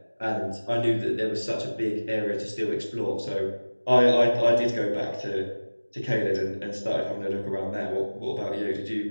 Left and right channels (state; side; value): inverted; both; correlation -1.00